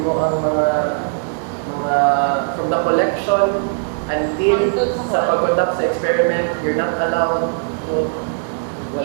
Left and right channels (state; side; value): silent; left; digital silence